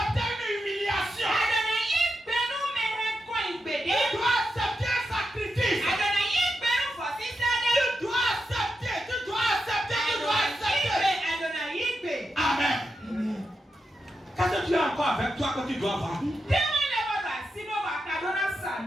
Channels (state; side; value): normal; both; correlation 0.87